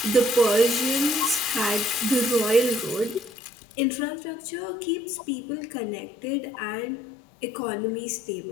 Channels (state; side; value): drops out; right; at 3.3 s